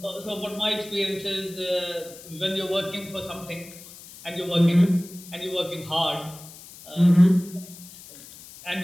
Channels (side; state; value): left; noise; hiss, 18 dB below the sound